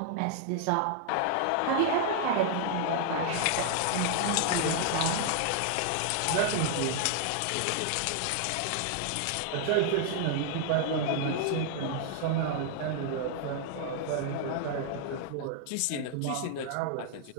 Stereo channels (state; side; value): different; both; correlation 0.00